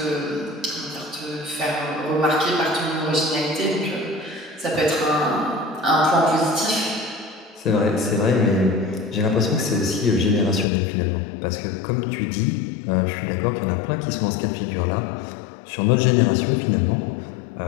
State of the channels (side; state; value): right; drops out; at 10.7 s